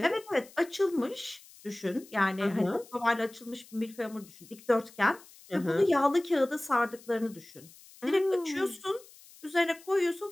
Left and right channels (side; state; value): left; noise; hiss, 23 dB below the sound